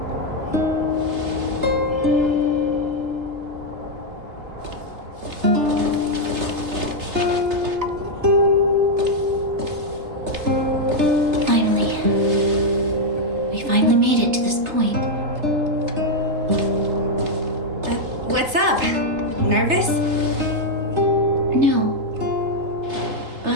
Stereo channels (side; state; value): left; late; 3.3 ms